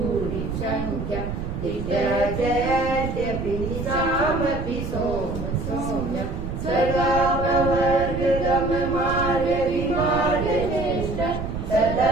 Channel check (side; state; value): right; noise; rumble, 5 dB below the sound